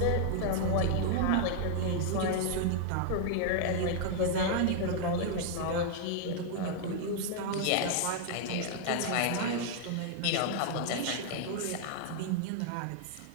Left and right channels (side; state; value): both; different; correlation 0.00